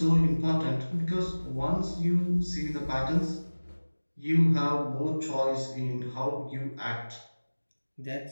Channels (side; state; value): both; inverted; correlation -1.00